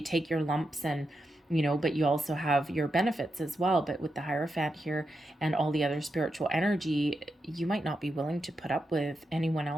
take your lumps and, but you also have your benefits as well. But with the Hierophant here and all the other spiritual energy, you might not be willing to put up with anyone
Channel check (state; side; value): normal; both; correlation 0.87